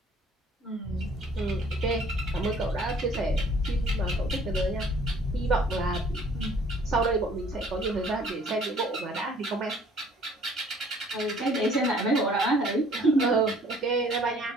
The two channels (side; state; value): both; normal; correlation 0.57